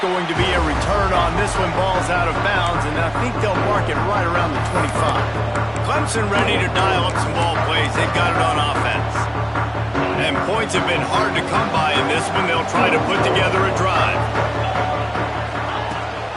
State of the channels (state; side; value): identical; both; correlation 1.00